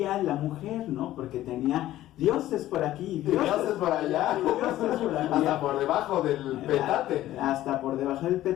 la mujer, ¿no? Porque tenía dioses por aquí, dioses por allá, dioses por allá. Hasta por debajo del petate. Hasta por debajo del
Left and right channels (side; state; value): right; quieter; 14.3 dB